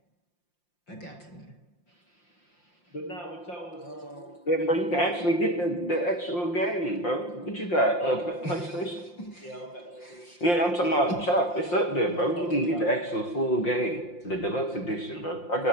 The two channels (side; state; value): right; late; 5.7 ms